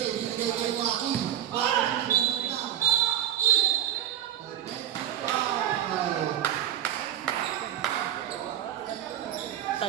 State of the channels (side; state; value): left; quieter; 11.2 dB